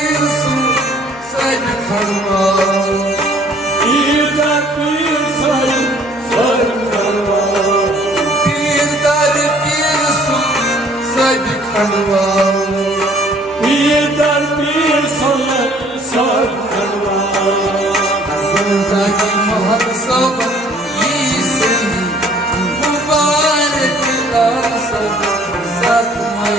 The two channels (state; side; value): normal; both; correlation 0.58